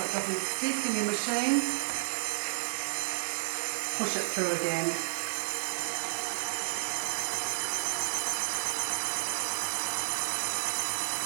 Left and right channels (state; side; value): silent; left; 55 dB below the other